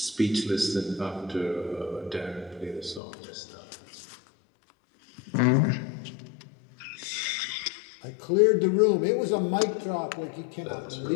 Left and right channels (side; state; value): right; drops out; at 3.0 s